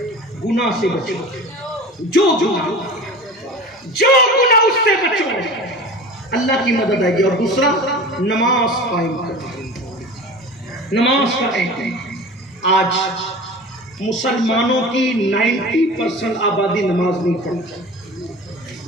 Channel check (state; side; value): normal; both; correlation 0.36